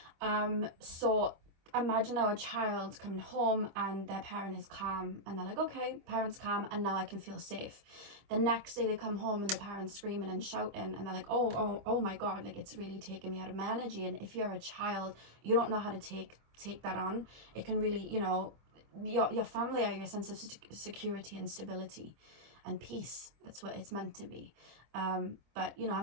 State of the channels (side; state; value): left; late; 25 ms